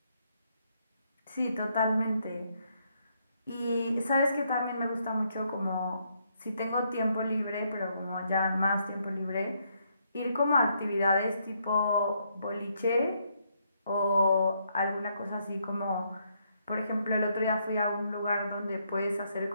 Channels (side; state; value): both; inverted; correlation -0.75